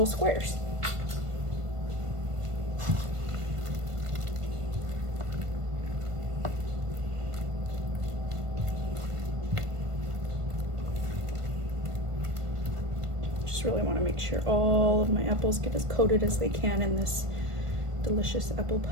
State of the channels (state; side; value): late; left; 1.5 ms